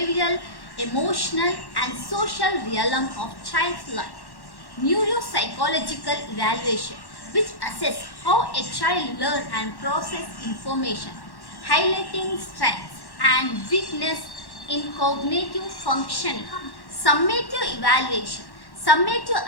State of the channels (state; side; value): late; right; 1.1 ms